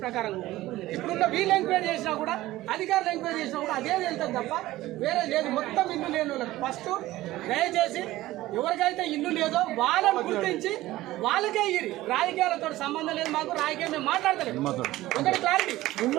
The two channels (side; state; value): left; quieter; 16.6 dB